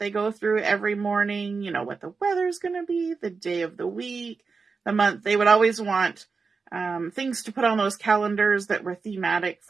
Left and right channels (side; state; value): left; quieter; 4.7 dB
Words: go through every morning, you know, what the weather's going to be, the day of the week, the month. They would always want things to put on those calendars that were thematic